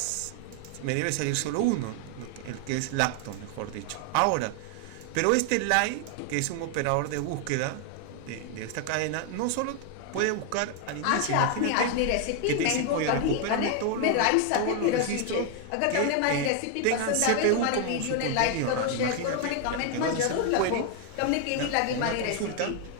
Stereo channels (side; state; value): both; different; correlation 0.00